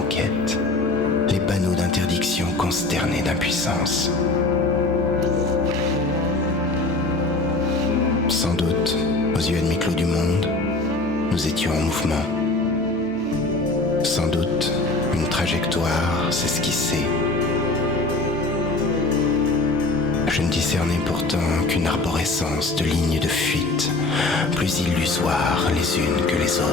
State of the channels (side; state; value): right; quieter; 3.2 dB